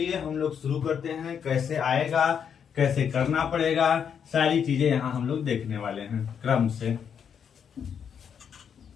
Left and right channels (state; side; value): quieter; right; 7.6 dB